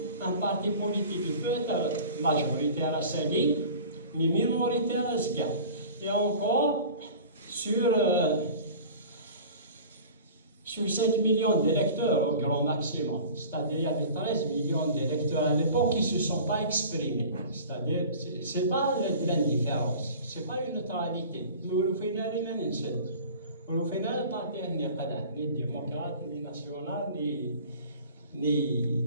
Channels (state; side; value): inverted; both; correlation -0.41